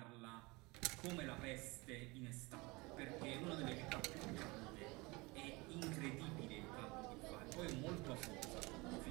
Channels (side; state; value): left; quieter; 24.6 dB